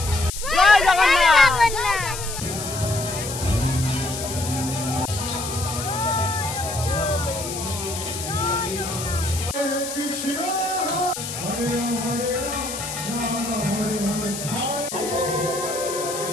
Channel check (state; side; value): noise; left; hiss, 7 dB below the sound